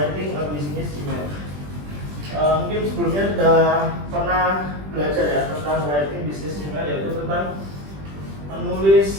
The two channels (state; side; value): late; left; 20 ms